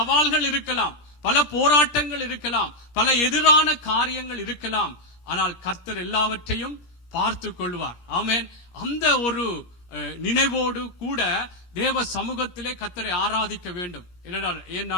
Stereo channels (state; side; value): late; right; 17 ms